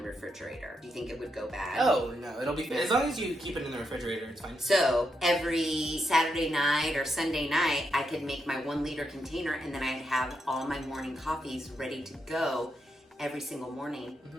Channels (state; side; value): normal; both; correlation 0.82